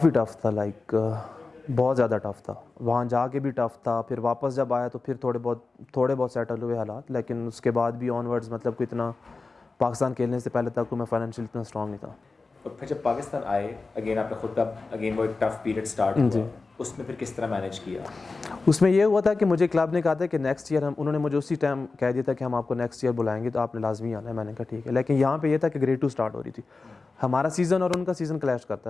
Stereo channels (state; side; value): quieter; right; 3.9 dB